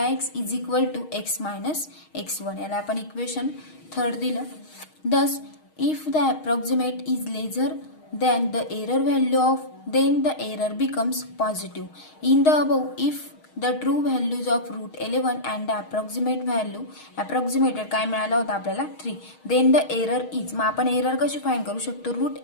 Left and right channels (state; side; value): late; right; 6.4 ms